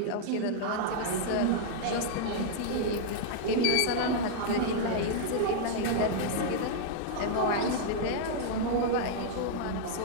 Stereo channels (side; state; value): both; different; correlation -0.01